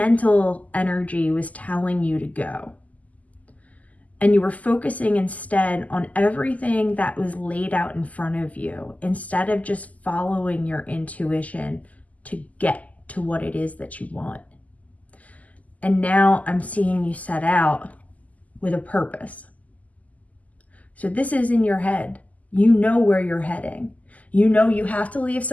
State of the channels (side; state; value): right; late; 0.075 ms